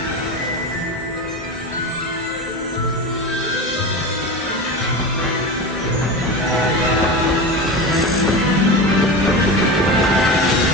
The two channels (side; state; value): both; normal; correlation 0.25